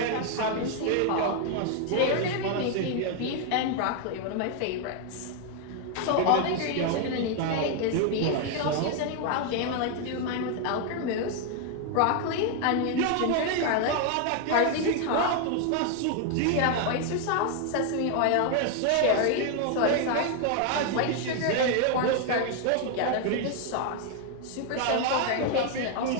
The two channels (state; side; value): different; both; correlation 0.00